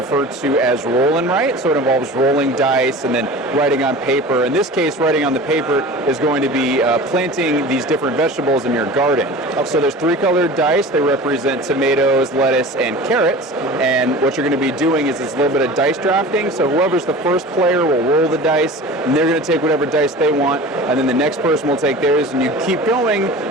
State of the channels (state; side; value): normal; both; correlation 0.37